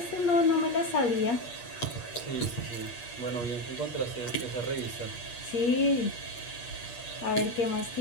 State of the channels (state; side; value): late; right; 8.5 ms